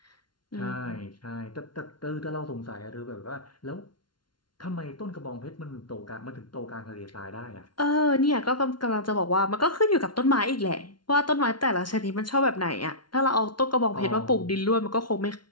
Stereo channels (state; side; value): late; right; 0.71 ms